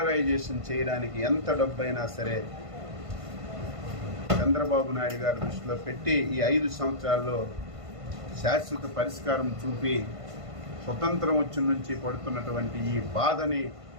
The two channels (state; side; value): late; left; 1.5 ms